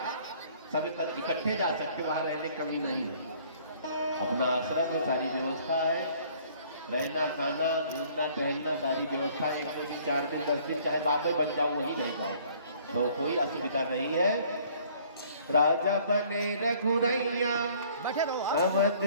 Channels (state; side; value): inverted; both; correlation -0.57